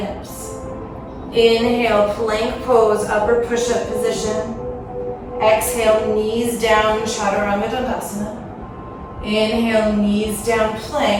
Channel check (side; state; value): both; identical; correlation 1.00